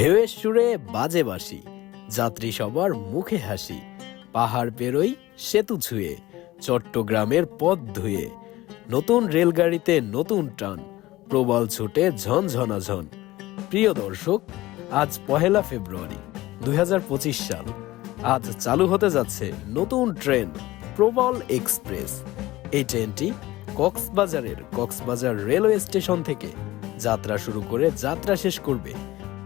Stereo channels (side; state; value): right; quieter; 17.4 dB